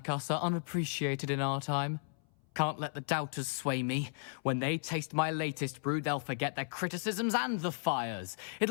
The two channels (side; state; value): right; silent; 55 dB below the other